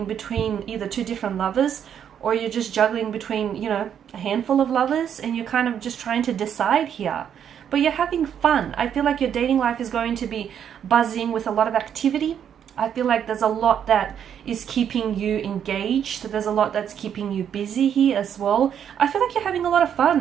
between either two different lovers, or you're just juggling between, you know, a handful of lovers, and you're kind of just trying to decide here. But you're having fun. I feel like your dating life is going to be buzzing with a lot of activity. I feel like there's a lot that is keeping you engaged. There's a lot that's keeping you busy here as well. I feel like you're having a lot of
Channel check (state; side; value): quieter; left; 8.8 dB